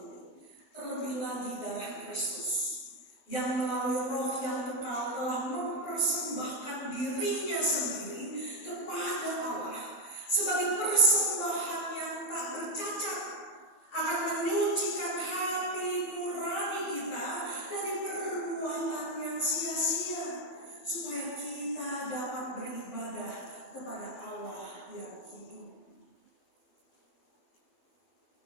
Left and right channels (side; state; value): right; late; 12 ms